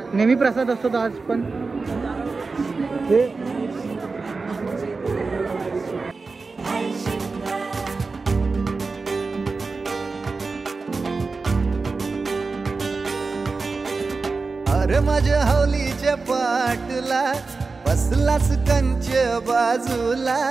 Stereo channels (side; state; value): left; quieter; 4.1 dB